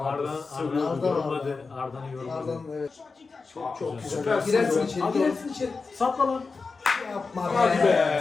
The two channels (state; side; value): quieter; right; 4.4 dB